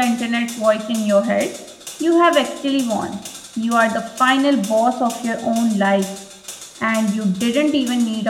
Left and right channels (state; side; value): identical; both; correlation 1.00